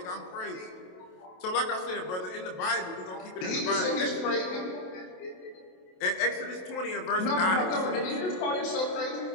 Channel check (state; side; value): late; right; 27 ms